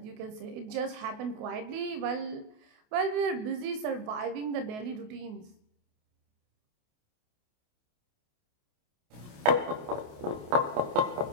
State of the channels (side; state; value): left; late; 28 ms